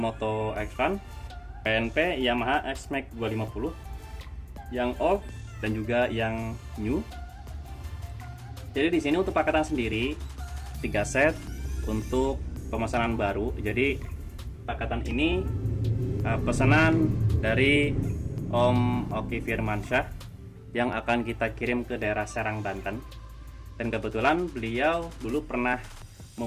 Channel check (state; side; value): identical; both; correlation 1.00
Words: X1 PNP Yamaha X-Max 250 yang old dan juga yang new. Jadi di sini untuk paketan sendiri 3 set untuk pemesanan baru. Jadi paketan ini pesanan dari Om Oki Firmansyah yang akan kita kirim ke daerah Serang, Banten. Dan kebetulan beliau dulu pernah